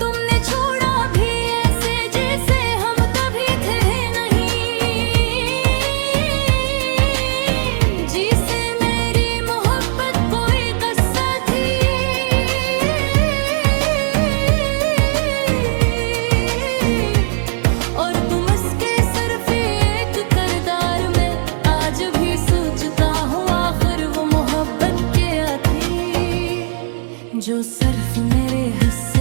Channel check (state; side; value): silent; left; digital silence